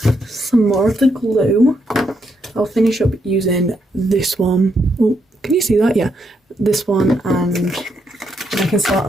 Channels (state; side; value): normal; both; correlation 0.78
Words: some more of the glue. I'll finish up using this one. Oh, can you see that? Yeah, this one, and I can start